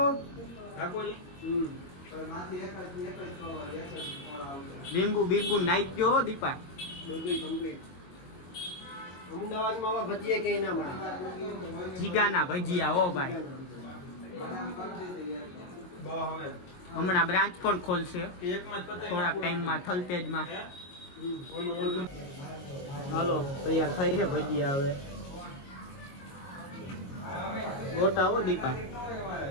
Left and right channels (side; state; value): right; late; 22 ms